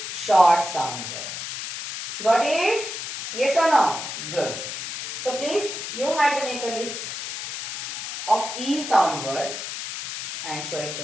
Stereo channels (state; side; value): noise; left; hiss, 6 dB below the sound